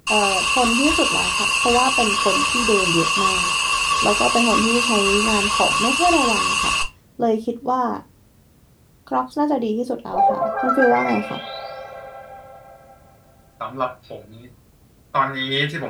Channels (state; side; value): identical; both; correlation 1.00